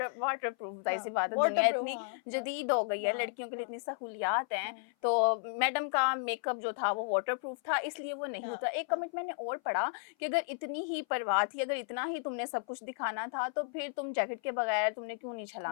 वाटर प्रूफ, जाहिर सी हाँ, बात है, दुनिया वाटरप्रूफ, इतनी हाँ, जदीद हो गई है, हाँ, लड़कियों के लिए हाँ, इतनी सहूलियात हैं। हाँ, तो मैडम का मेकअप जो था वो वाटर प्रूफ था, इसलिए वो नहीं हाँ, होता। एक हाँ, कमेंट मैंने और पढ़ा कि अगर इतनी ही परवाह थी, अगर इतना ही तुमने सब कुछ दिखाना था, तो फिर तुम जैकेट के बगैर तुमने क्यों नहीं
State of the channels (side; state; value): right; silent; 55 dB below the other